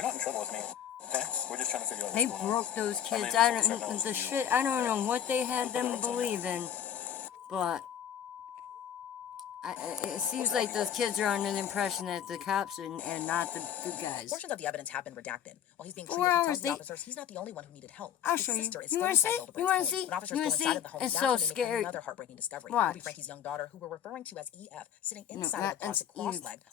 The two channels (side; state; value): right; quieter; 9.4 dB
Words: not in trouble with me. Okay? We're just trying to figure out They what's going on. broke those kids. I mean, I don't know what they had them believe in, but it seems like those kids are under the impression that the cops and not the good guys. Portions of the evidence have been redacted. While he's being 4 treated, he hours, tells the officers he's not the only one who needed help. I'll His show you. sister is You still wanna inside see? Hildebrand's You wanna home. see? When officers You wanna go see? inside of the home, It's that's so when they make scary. another heartbreaking discovery. Watch. Ruby, Frankie's young daughter, who we're referring to as EF, sitting No, inside of the that's closet, cross-legged, Eve,